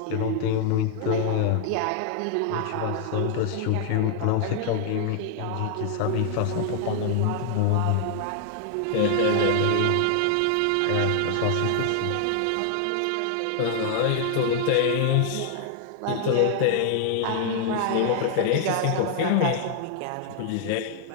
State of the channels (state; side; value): different; both; correlation 0.00